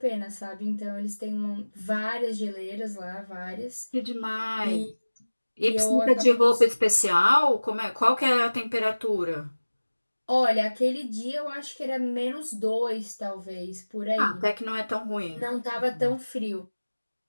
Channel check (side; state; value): both; inverted; correlation -1.00